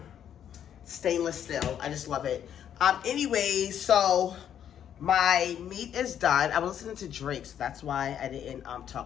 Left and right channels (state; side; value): quieter; right; 9.5 dB